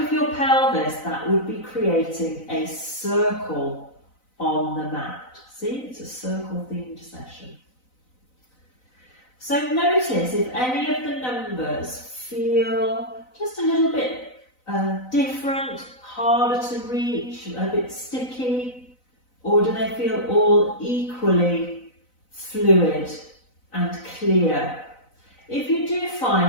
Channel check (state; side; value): late; right; 4.0 ms